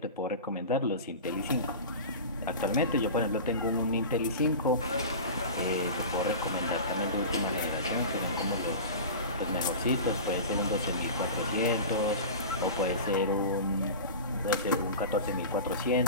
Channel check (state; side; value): inverted; both; correlation -0.31